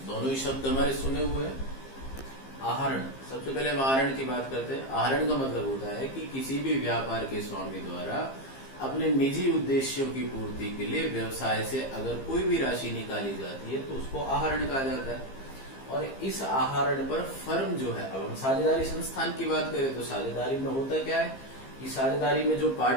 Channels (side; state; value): right; late; 15 ms